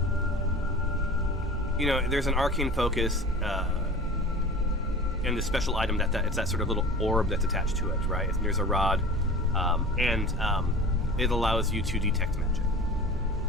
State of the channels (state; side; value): normal; both; correlation 0.38